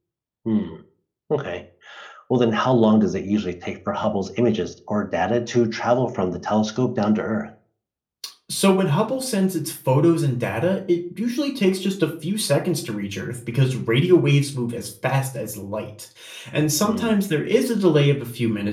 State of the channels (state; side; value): identical; both; correlation 1.00